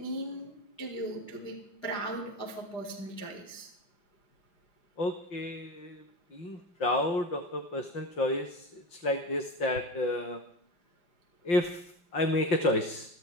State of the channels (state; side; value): late; right; 5.7 ms